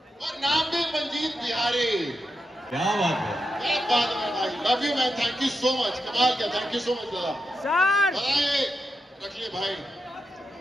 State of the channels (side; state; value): both; normal; correlation 0.86